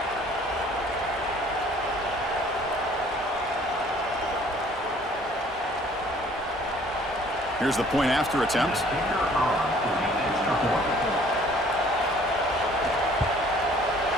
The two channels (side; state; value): both; normal; correlation 0.56